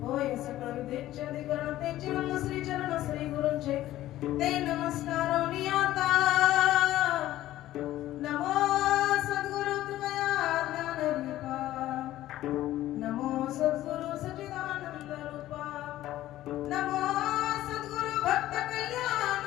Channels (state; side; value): quieter; right; 14.5 dB